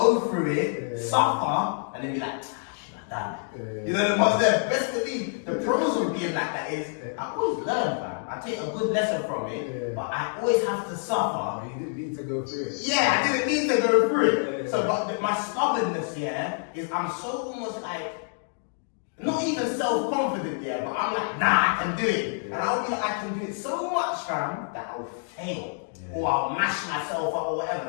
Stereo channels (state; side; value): silent; right; 60 dB below the other